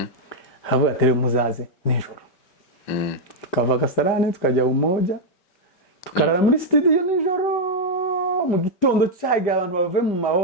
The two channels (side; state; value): right; late; 5.1 ms